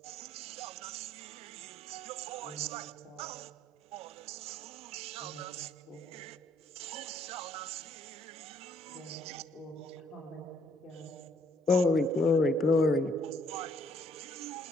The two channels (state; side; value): normal; both; correlation 0.66